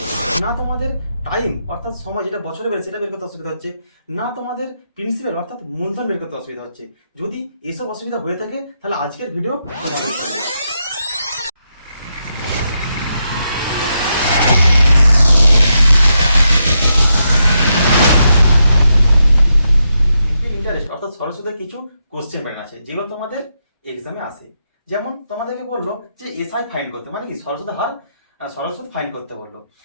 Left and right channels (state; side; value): inverted; both; correlation -0.83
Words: না তোমাদের টাইম অর্থাৎ সময় যেটা বছরে বেড়ে সেটা বের করতে অসুবিধা হচ্ছে, না তোমাদের প্রিন্সিপাল অর্থাৎ মূলধন বের করতে অসুবিধা হচ্ছে। যদি এসব অসুবিধা হয়ে থাকে তাহলে আজকের ভিডিও তোমাদের জন্য। ইন্টারেস্ট অর্থাৎ সরল সুদের কিছু কোশ্চেন প্যাটার্ন আছে যেগুলো তোমাদের এক্সামে আসে। যেমন তোমাদেরকে বললো যে এসআই ফাইন করতে, মানে কি সরল সুদের হার, সরল সুদ ফাইন করতে বললো।